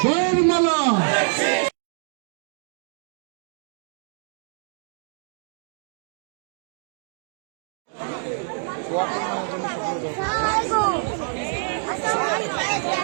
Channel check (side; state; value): left; silent; 61 dB below the other